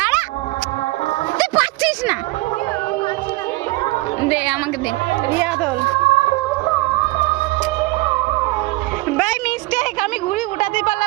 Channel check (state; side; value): quieter; left; 21.5 dB